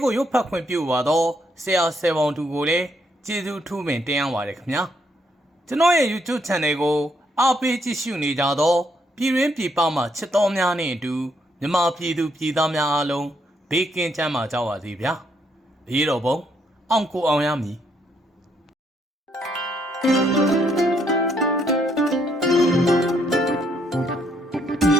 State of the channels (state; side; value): normal; both; correlation 0.73